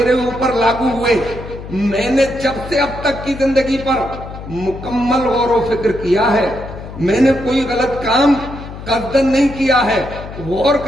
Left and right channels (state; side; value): noise; left; hum, 12 dB below the sound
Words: ऊपर लागू हुए, मैंने जब से अब तक की जिंदगी पर मुकम्मल गौर व फिक्र किया है, मैंने कोई गलत काम कस्दन नहीं किया है, गौर